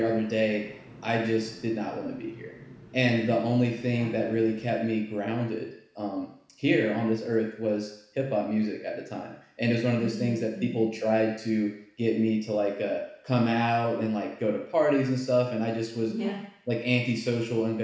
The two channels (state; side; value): identical; both; correlation 1.00